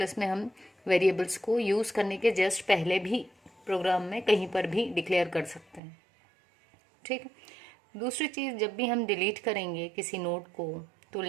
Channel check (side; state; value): left; drops out; at 5.8 s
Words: में हम वेरिएबल्स को यूज़ करने के जस्ट पहले भी प्रोग्राम में कहीं पर भी डिक्लेयर कर सकते हैं, ठीक है। दूसरी चीज़, जब भी हम डिलीट करेंगे किसी नोड को तो